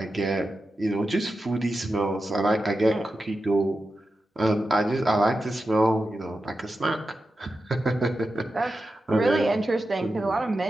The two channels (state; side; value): normal; both; correlation 0.91